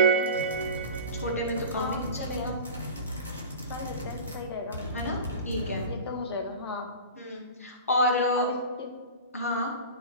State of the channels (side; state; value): both; inverted; correlation -0.33